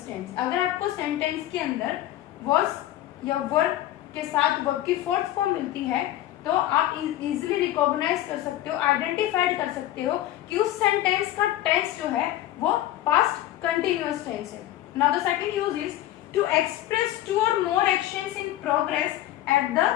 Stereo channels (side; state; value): right; quieter; 13.9 dB